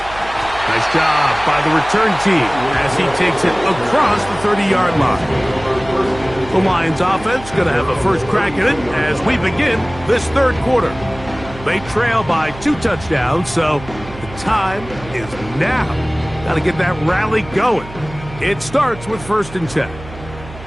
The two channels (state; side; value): noise; right; hum, 15 dB below the sound